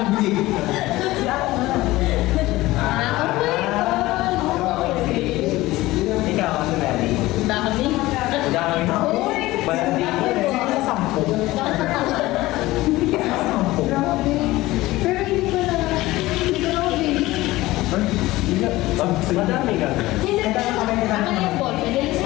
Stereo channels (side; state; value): right; quieter; 18.3 dB